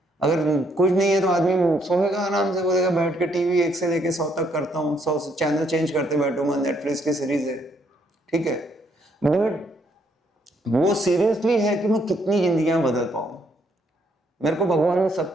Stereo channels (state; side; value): normal; both; correlation 0.71